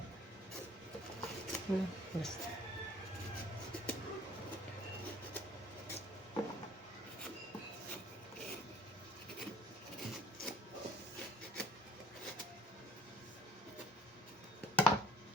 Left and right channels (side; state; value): both; normal; correlation 0.51